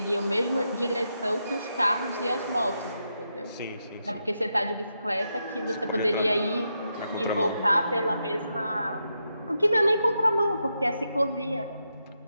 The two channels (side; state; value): both; inverted; correlation -0.84